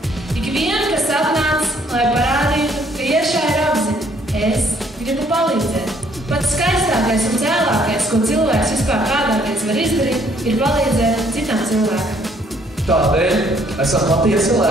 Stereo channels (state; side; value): normal; both; correlation 0.64